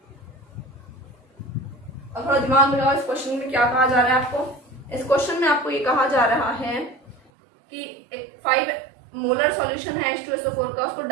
अब थोड़ा दिमाग लगाओ, इस क्वेश्चन में क्या कहा जा रहा है आपको। इस क्वेश्चन में आपको ये कहा जा रहा है कि एक 5 मोलर सॉल्यूशन है H2SO4 का, उसको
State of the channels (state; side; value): drops out; left; at 7.3 s